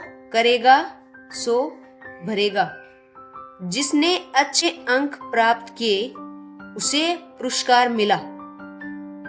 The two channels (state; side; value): identical; both; correlation 1.00